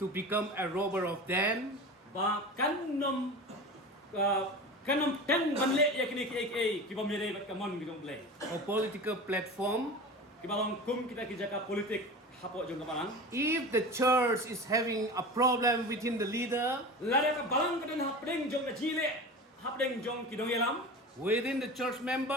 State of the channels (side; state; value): both; normal; correlation 0.32